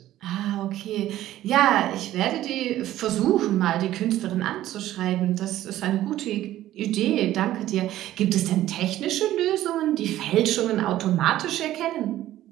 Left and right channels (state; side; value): quieter; left; 13.8 dB